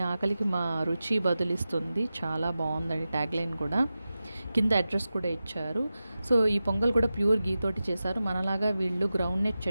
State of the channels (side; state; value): both; inverted; correlation -0.94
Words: ఆకలికి మా రుచి బదులిస్తుంది. చాలా బాగుందండి ట్యాగ్ లైన్ కూడా. కింద అడ్రస్ కూడా ఇచ్చారు. సో ఈ పొంగల్ కూడా ప్యూర్ గీ తోటి చేశారు. మనలాగా వీళ్ళు గ్రౌండ్ నట్